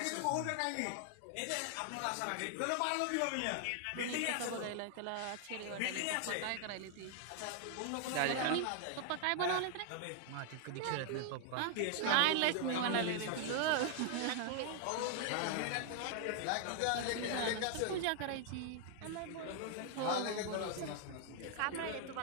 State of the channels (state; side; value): different; both; correlation 0.00